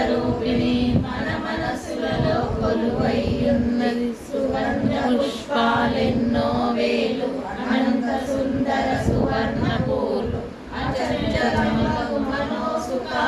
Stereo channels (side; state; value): both; identical; correlation 1.00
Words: మన మనసులలో కొలువైయున్నది సువర్ణ పుష్పాలెన్నో వేలు అనంత సుందర సువర్ణ పూలు అచంచలమగు